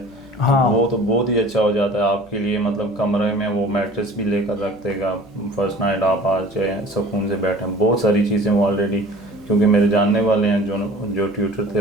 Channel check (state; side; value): noise; left; hum, 26 dB below the sound